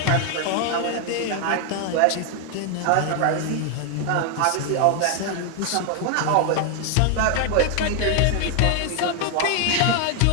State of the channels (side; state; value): both; different; correlation 0.00